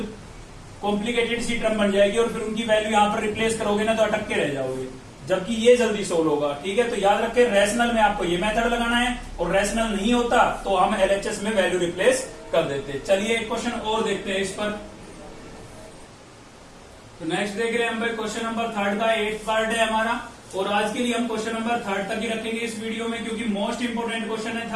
कॉम्प्लिकेटेड सी टर्म बन जाएगी, और फिर उनकी वैल्यू यहाँ पर रिप्लेस करोगे ना तो अटक के रह जाओगे, जबकि ये जल्दी सोल्व होगा। ठीक है, तो याद रखें रैशनल में आपको ये मेथड लगाना है, और रैशनल नहीं होता तो हम एलएचएस में वैल्यू रिप्लेस कर देते। चलिए एक क्वेश्चन और देखते हैं इस पर। तो नेक्स्ट देख रहे हैं हम भाई क्वेश्चन नंबर 3 का 8th पार्ट है हमारा, और आज के लिए हम क्वेश्चन नंबर 3 तक ही रखेंगे इस वीडियो में, क्योंकि मोस्ट इंपोर्टेंट क्वेश्चन है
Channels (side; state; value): both; identical; correlation 1.00